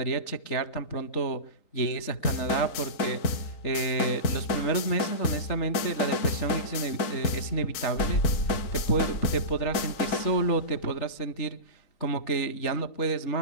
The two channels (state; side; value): late; right; 3.8 ms